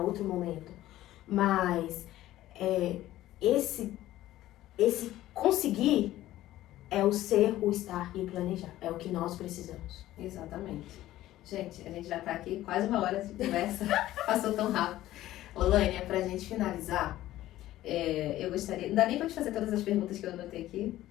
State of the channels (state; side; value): quieter; right; 14.7 dB